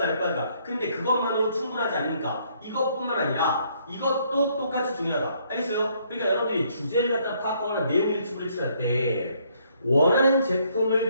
할 거 아니야. 근데 그것만으로 충분하지 않으니까 이것뿐만 아니라 이것도 똑같이 중요하다. 알겠어요? 그러니까 여러분들이 주제를 갖다 파악하거나 내용 일치부를 칠할 때 원하는 제품을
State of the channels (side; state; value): both; inverted; correlation -0.68